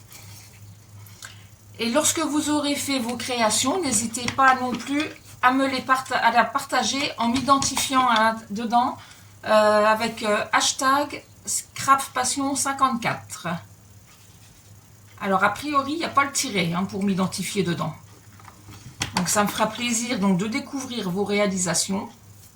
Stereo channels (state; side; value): identical; both; correlation 1.00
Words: Et lorsque vous aurez fait vos créations, n'hésitez pas non plus à me à la partager en m'identifiant dedans avec hashtag ScrapPassion54. Alors a priori, il n'y a pas le tiret pour m'identifier dedans. Donc ça me fera plaisir donc, de découvrir vos réalisations.